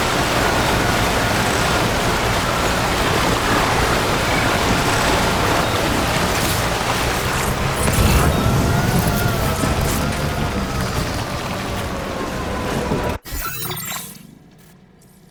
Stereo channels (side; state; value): both; identical; correlation 1.00